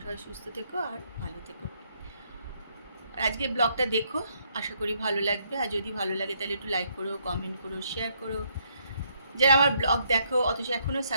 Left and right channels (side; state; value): both; inverted; correlation -0.72